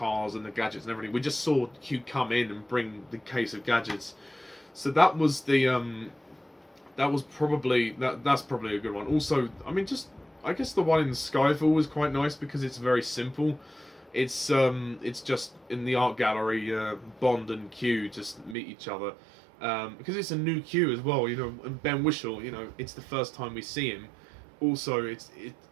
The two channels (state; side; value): drops out; left; at 18.6 s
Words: and the gadgets and everything. We just saw Q come in and bring the case of gadgets. So that was the that's probably a good one. Also, I mean, I guess the one in Skyfall was quite nice because it's very simple. It's just in the art gallery, Bond and Q just meet each other, because it's a new Q as well, you know. And Ben Whishaw, you know, it's the first time we see him. Also,